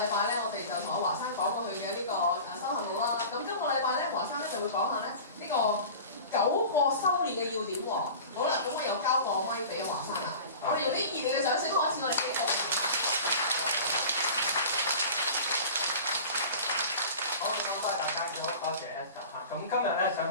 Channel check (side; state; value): both; inverted; correlation -0.38